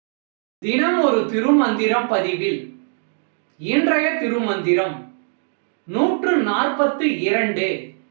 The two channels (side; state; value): left; silent; digital silence